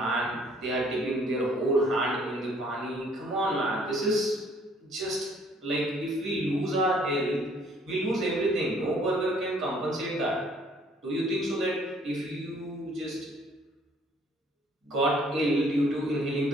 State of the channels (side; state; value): both; normal; correlation 0.61